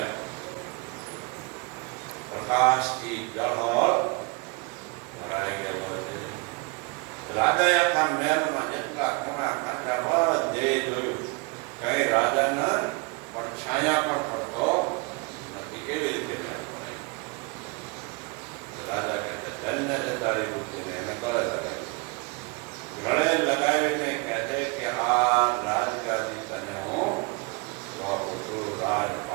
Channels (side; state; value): left; quieter; 28.3 dB